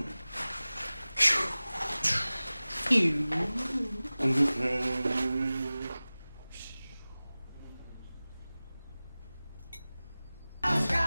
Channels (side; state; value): both; inverted; correlation -0.98